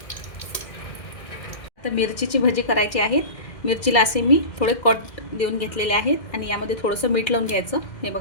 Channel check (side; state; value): right; late; 2.3 ms